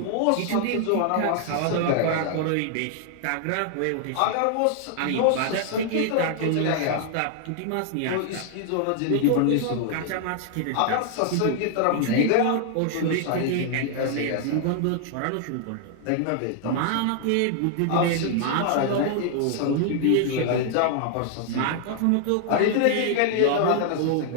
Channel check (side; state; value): both; different; correlation 0.00